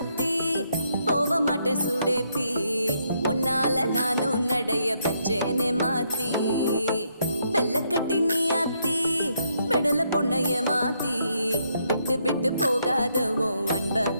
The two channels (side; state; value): both; inverted; correlation -0.75